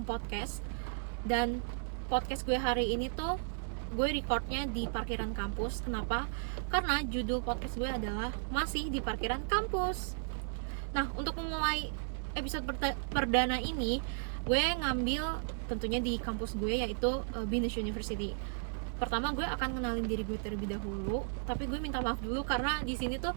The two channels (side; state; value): left; silent; digital silence